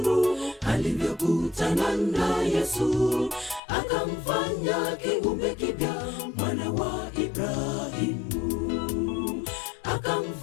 alivyokutana na Yesu, akamfanya kiumbe kipya, mwana wa Ibrahimu.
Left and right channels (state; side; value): drops out; right; at 3.6 s